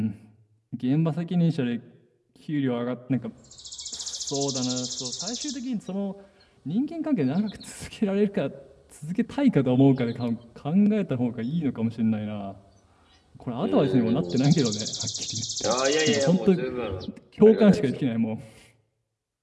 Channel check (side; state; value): both; identical; correlation 1.00